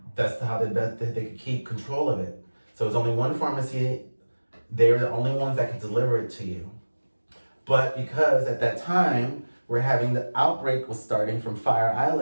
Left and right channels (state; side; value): inverted; both; correlation -1.00